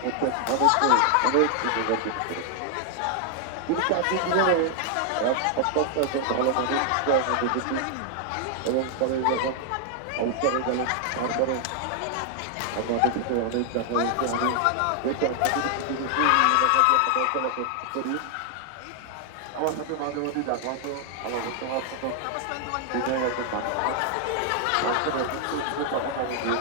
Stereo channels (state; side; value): different; both; correlation 0.00